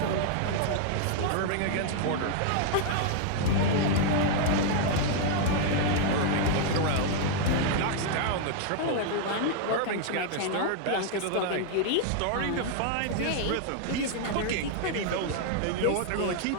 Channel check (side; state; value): both; different; correlation 0.00